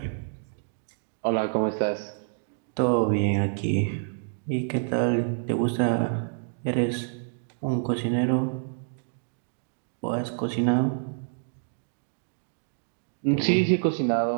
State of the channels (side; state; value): left; silent; digital silence